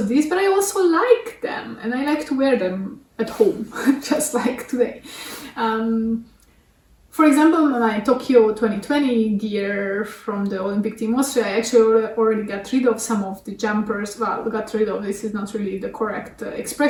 these, but I also like them and I like to wear them at home, just like today. For example, my Tokyo 2020 gear from the Olympic Team Austria, I actually already got rid of some of the jumpers. Well, got rid of, this is not really the correct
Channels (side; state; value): both; identical; correlation 1.00